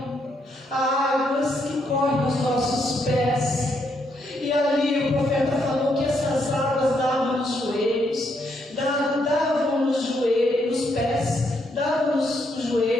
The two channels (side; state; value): both; normal; correlation 0.76